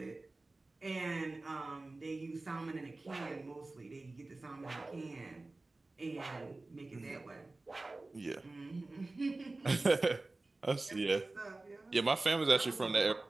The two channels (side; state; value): left; quieter; 3.1 dB